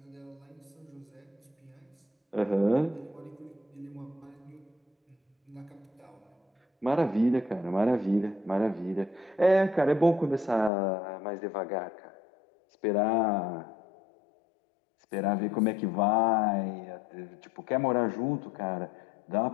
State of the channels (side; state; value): right; drops out; at 10.7 s